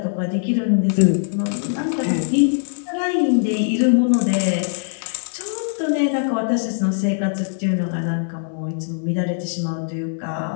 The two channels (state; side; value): silent; right; digital silence